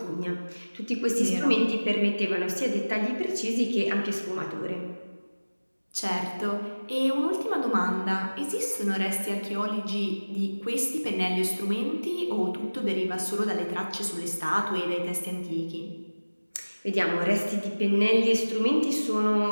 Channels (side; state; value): both; inverted; correlation -1.00